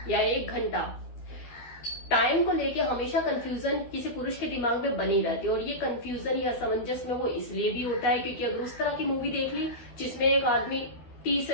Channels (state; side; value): late; right; 12 ms